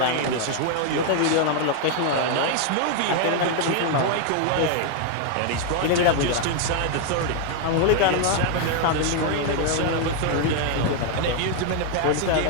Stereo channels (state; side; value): different; both; correlation 0.00